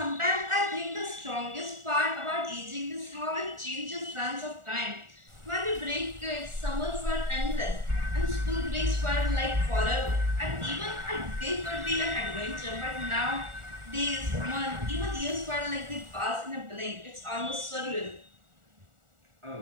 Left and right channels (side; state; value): left; late; 1.4 ms